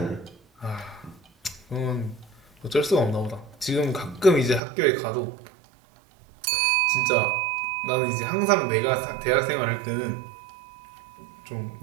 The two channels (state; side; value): drops out; left; at 4.6 s